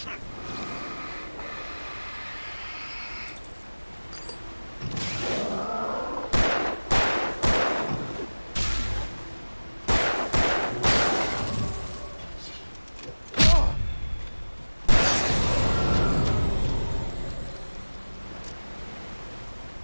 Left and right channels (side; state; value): both; inverted; correlation -1.00